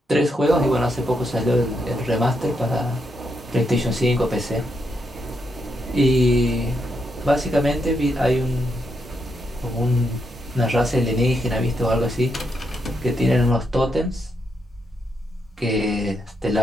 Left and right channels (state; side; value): normal; both; correlation 0.81